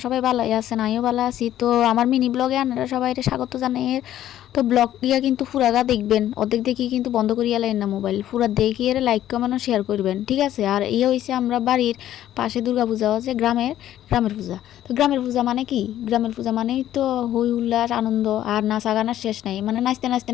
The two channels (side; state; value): right; quieter; 12.3 dB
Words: সবাই ভালোই আছেন, আমিও ভালো আছি। তো আমার মিনি ব্লগে আপনারা সবাই স্বাগত জানাই। তো ব্লগ দিয়া কিন্তু পুরাটা দেখবেন, অর্ধেক দেখি কিন্তু বন্ধ করিয়া লাইন না মোবাইল, পুরা দেখিয়ে লাইক কমেন্ট শেয়ার করবেন, ঠিক আছে? আর ইয়ে হয়েছে আমরা বাড়ির পাশে দুর্গা পূজা হচ্ছে, গ্রামের পূজা। তো গ্রামের পূজা মানে কি? গ্রামের পূজা মানেই তো হই উল্লাস আনন্দ আর নাচা গানার শেষ নাই, মানে নাচতে নাচতে